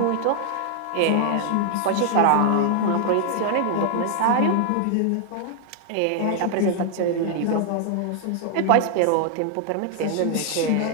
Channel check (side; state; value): both; different; correlation 0.00